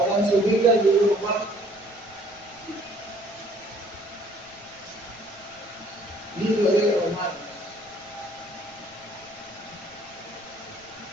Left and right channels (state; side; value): noise; right; rumble, 29 dB below the sound